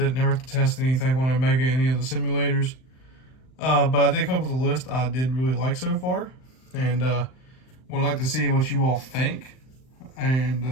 Never got to test anything when I mega any of the simulators. But I did come up with a list I did really like so far, and would like to see what you all think, and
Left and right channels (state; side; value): late; right; 39 ms